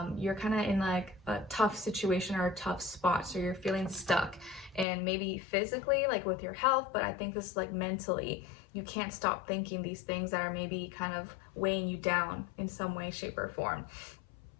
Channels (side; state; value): right; drops out; at 4.9 s